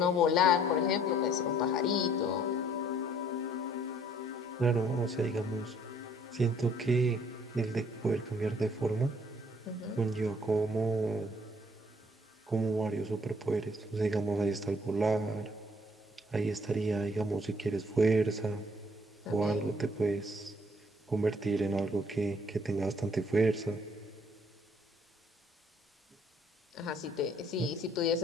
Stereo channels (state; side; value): normal; both; correlation 0.61